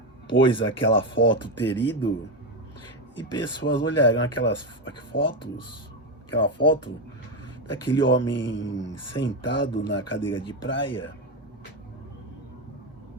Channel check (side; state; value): both; normal; correlation 0.11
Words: pôs aquela foto ter ido, e pessoas olharão aquela foto daquele homem sentado na cadeira de praia